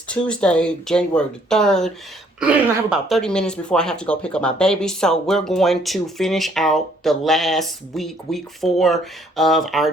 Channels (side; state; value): both; normal; correlation 0.64